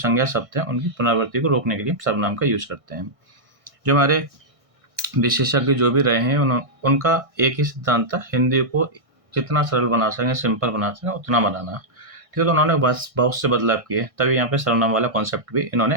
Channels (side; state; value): left; late; 1.6 ms